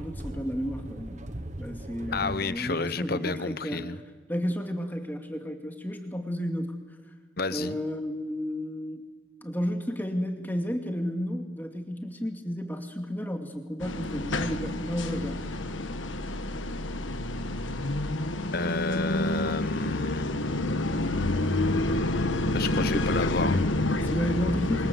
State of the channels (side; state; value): both; normal; correlation 0.60